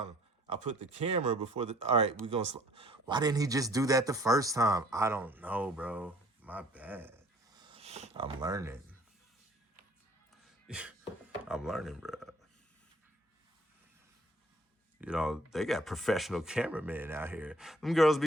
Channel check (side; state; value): both; normal; correlation 0.56